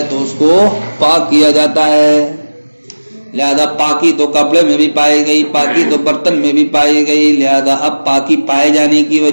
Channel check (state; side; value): inverted; both; correlation -1.00